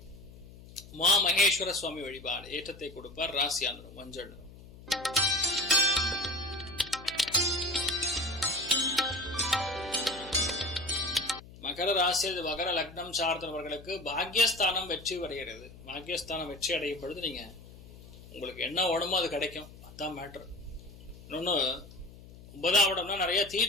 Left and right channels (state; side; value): noise; left; hum, 18 dB below the sound